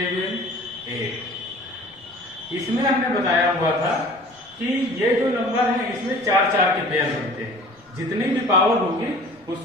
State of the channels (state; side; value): normal; both; correlation 0.46